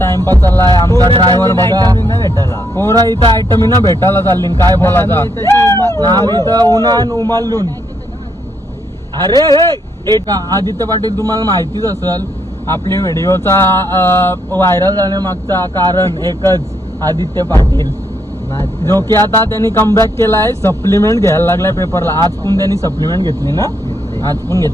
चाललाय. आमचा ड्रायव्हर बघा पोरा इथं आयटम ना भेटायला चालली काय बोलायचा. आम्ही तर उन्हान उमालून अरे आदित्य पाटील तुम्हाला माहितीच असेल आपल्या व्हिडिओचा व्हायरल जाण्यामागचा कारण एकच आदित्य पाटील जो की आता त्यांनी कमबॅक केलाय. सप्लिमेंट घ्यायला लागलाय पेपरला. आज पण त्यांनी सप्लिमेंट घेतली ना आज पण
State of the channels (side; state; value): both; normal; correlation 0.75